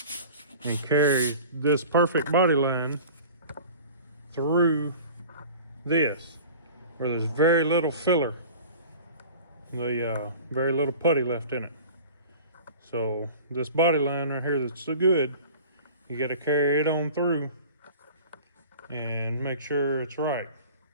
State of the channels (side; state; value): both; inverted; correlation -0.41